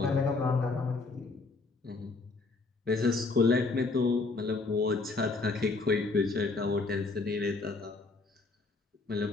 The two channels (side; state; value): right; quieter; 3.8 dB